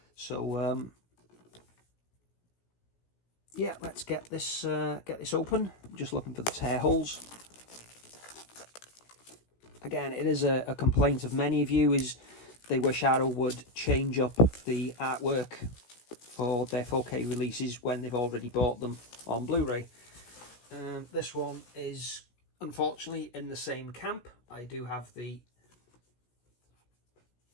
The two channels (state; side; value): late; right; 17 ms